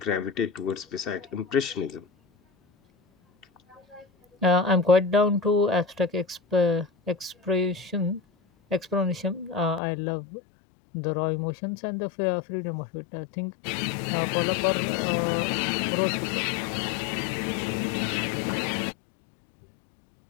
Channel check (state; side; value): drops out; right; at 9.8 s